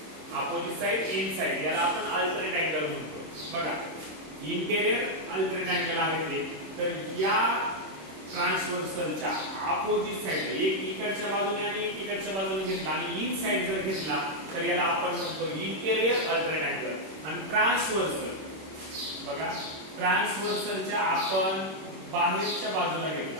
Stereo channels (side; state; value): left; late; 26 ms